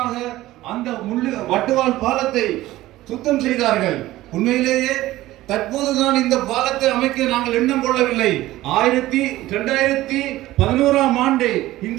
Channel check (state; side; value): quieter; left; 16.4 dB